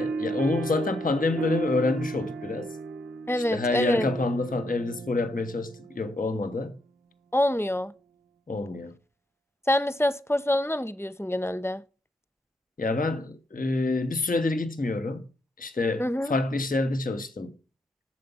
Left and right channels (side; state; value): both; normal; correlation 0.78